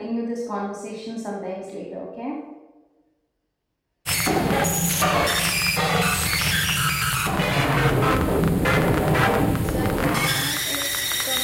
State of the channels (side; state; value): both; identical; correlation 1.00